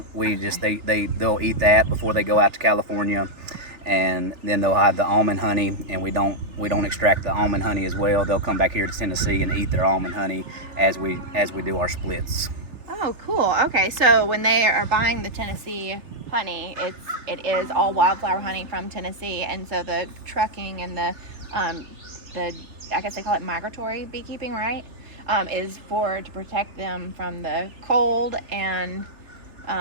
We just they'll eat that before they go out to California, and then they'll have the almond honey, and we don't extract the almond honey as well. They'll come back here to Tennessee and eat their almond honey as we do our splits. Oh, cool. Okay, so when they are buying the Tennessee honey, it is all wildflower honey from Tennessee, and so the trucking and the I guess they call it migratory beekeeping, right? Is to protect them from the cold and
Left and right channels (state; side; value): late; left; 3.4 ms